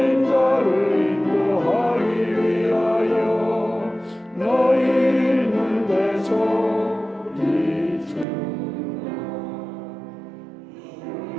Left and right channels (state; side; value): drops out; left; at 8.2 s